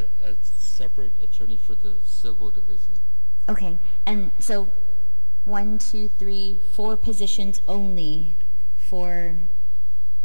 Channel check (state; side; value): inverted; both; correlation -1.00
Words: a separate attorney for the civil division. Okay, and so 1, 2, 3, 4 positions only for